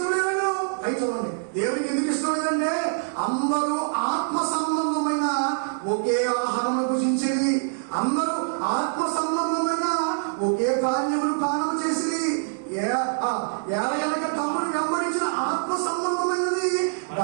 లేదండు? అయి చూడండి, దేవునికి ఎందుకు ఇష్టం లేదంటే అందరూ ఆత్మ సంబంధమైన ఒకే ఆహారం భుజించేది, అందరూ ఆత్మ సంబంధమైన ఒకే కార్యములు పాలన చేసి ఏళ్ళ తమ్ముడు వెంబడించిన ఆత్మ సంబంధమైనది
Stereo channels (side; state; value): left; silent; digital silence